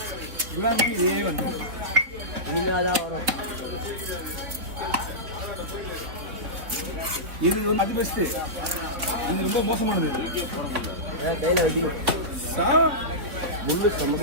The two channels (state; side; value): late; left; 4.1 ms